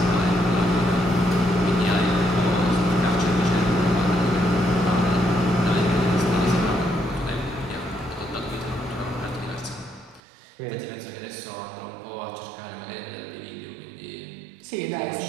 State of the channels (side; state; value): left; drops out; at 10.2 s